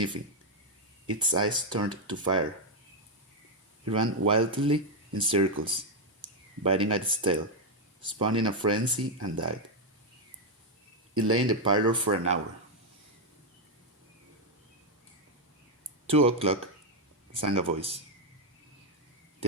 its eyes turned to fire. It ran wildly in circles, biting at its tail, spun in a frenzy, and died. It lay in the parlor for an hour. 2 o'clock, sang a voice.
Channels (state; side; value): normal; both; correlation 0.02